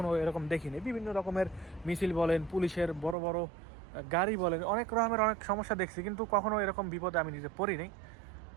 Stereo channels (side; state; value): left; drops out; at 3.2 s